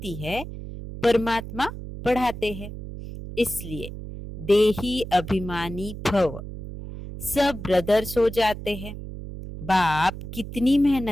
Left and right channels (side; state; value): right; noise; hum, 10 dB below the sound